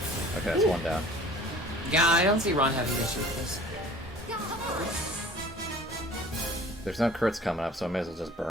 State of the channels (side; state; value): both; normal; correlation 0.47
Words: Okay, that's one down. Yeah, I don't see Ron having issues with this. There's no crits coming up, so I may as well just